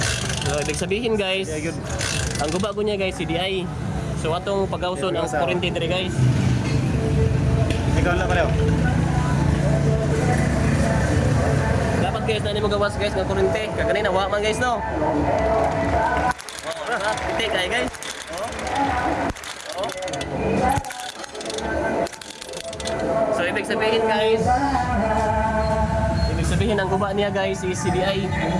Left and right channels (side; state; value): both; identical; correlation 1.00